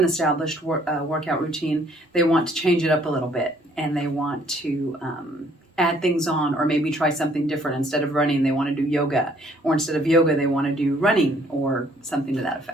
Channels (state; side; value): normal; both; correlation 0.62